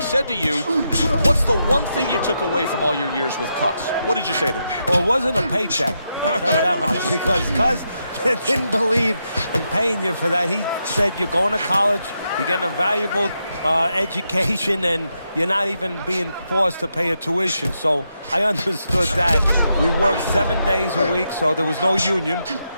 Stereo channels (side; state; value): both; inverted; correlation -0.83